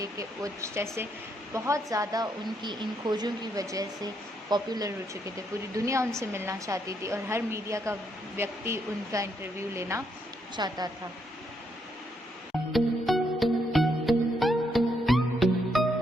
कि वो जैसे बहुत ज़्यादा उनकी इन खोजों की वजह से पॉपुलर हो चुके थे। पूरी दुनिया उनसे मिलना चाहती थी और हर मीडिया का व्यक्ति उनका इंटरव्यू लेना चाहता था।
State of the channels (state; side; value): normal; both; correlation 0.76